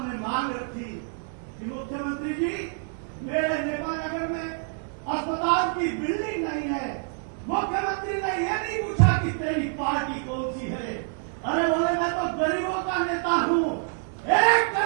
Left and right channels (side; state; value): left; silent; 60 dB below the other